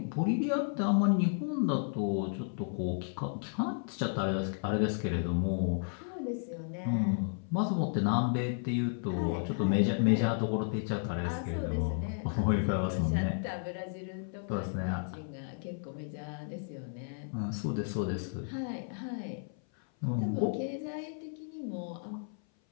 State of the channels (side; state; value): right; silent; 56 dB below the other